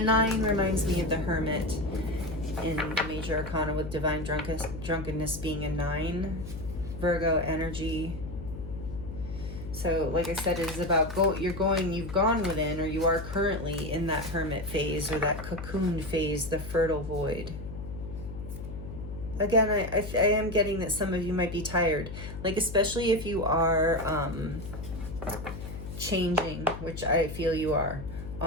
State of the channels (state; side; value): noise; left; hum, 9 dB below the sound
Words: reminds me of the Hermit in the Major Arcana, with divine drunkenness being a 9. Virgo energy. So like I said, it is about you've gone within, or you are currently in that hermit phase, or that cocoon phase, the fertile void. Again, I am getting that some of you might be tired, like especially if you are changing, which I feel you are,